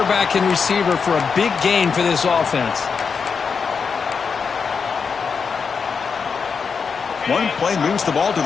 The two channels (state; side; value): quieter; right; 5.7 dB